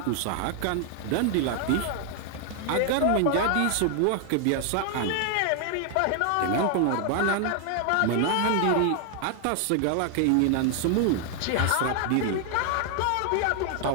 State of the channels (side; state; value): both; different; correlation 0.00